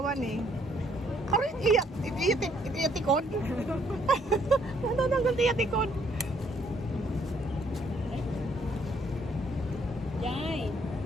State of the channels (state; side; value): normal; both; correlation 0.67